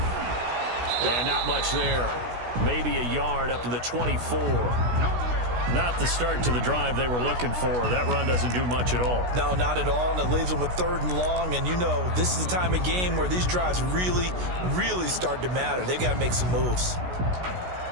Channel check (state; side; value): late; left; 16 ms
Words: And not much there. Maybe a yard up to the 24. Not the start to the drive they were looking for. That run doesn't do much at all. No, not at all, and it leaves them with 3rd and long. And you know, this is the time of game where these drives really, really start to matter. They've got to make some moves.